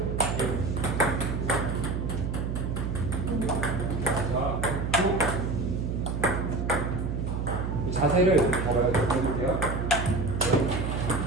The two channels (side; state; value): right; noise; hum, 2 dB below the sound